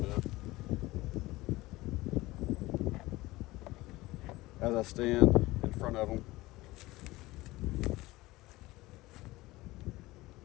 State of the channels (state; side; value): quieter; right; 19.4 dB